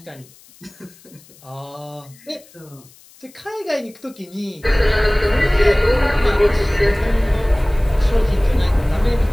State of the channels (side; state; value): left; noise; hiss, 26 dB below the sound